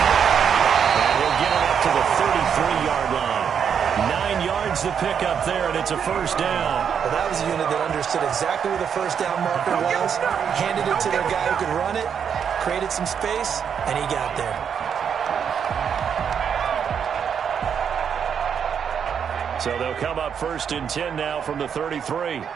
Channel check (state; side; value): quieter; left; 7.5 dB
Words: get it up to the 33-yard line. 9 yards the pickup there, and it's a first down. Well, that was a unit that understood exactly where the first down marker was, handed it to their guy who could run it, created some space, and he got there. So they'll come up first and 10 now from the 33.